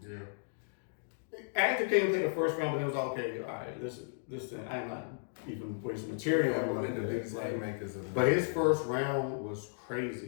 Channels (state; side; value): silent; right; digital silence